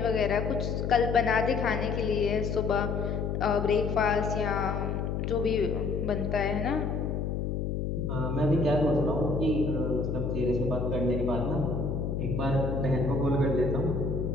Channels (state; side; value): noise; left; hum, 1 dB below the sound